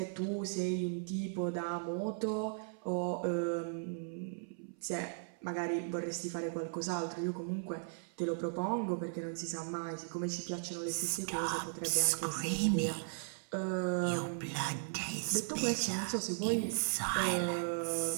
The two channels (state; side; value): silent; left; 53 dB below the other